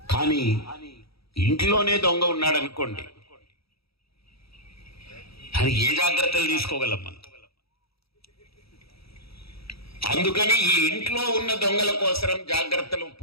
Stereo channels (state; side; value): late; right; 0.77 ms